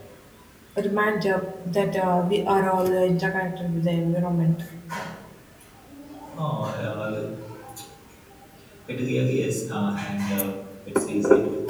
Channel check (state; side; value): identical; both; correlation 1.00